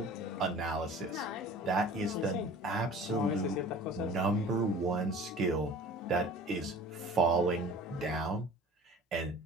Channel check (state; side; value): normal; both; correlation 0.44